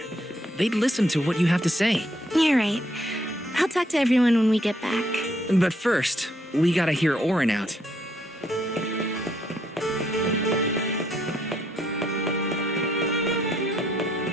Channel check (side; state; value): both; normal; correlation 0.72